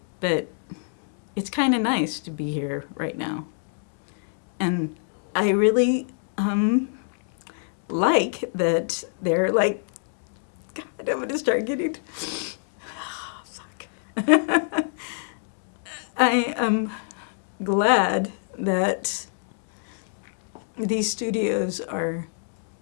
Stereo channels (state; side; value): silent; right; digital silence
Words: But it's kind of nice to be here right now. And I really like that they're like, God, I'm going to start getting, fuck. I am glad that these studios are